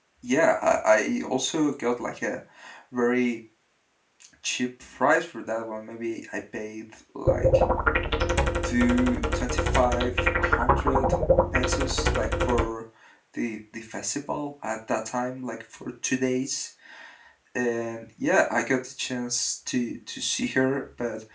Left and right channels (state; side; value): identical; both; correlation 1.00